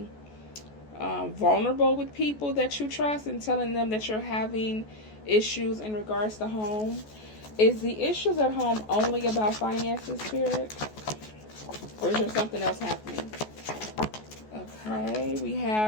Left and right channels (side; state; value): right; late; 14 ms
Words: vulnerable with people that you trust and telling them that you're having issues in regards to home. Is the issues at home only about finances, Spirit? Or is there something else happening? Okay, we